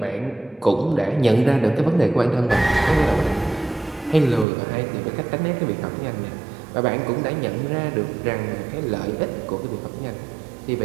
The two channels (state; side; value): drops out; left; at 4.5 s